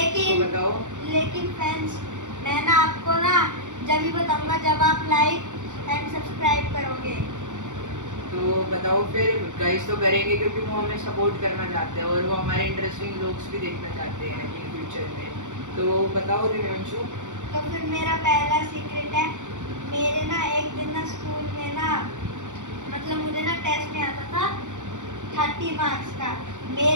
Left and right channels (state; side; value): late; left; 0.86 ms